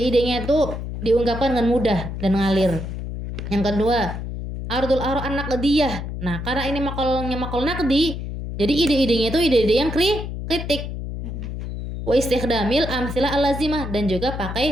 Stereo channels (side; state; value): left; noise; hum, 6 dB below the sound